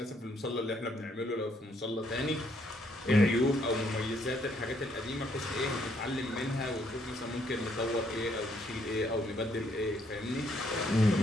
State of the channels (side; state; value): both; normal; correlation 0.70